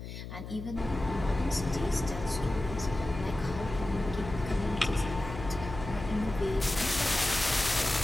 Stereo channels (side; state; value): left; noise; hum, 10 dB below the sound